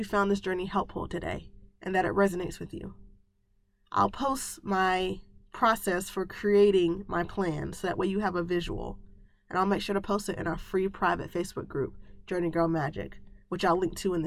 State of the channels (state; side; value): identical; both; correlation 1.00